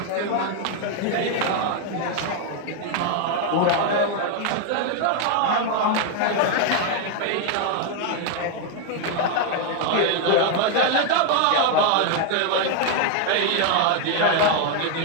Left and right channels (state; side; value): different; both; correlation 0.01